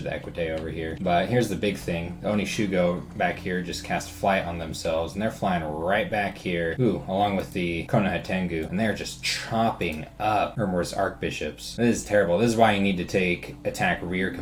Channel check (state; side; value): identical; both; correlation 1.00